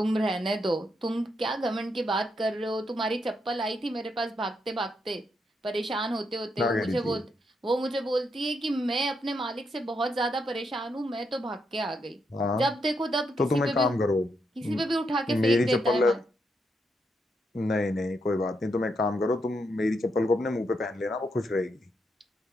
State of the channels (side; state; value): both; normal; correlation 0.80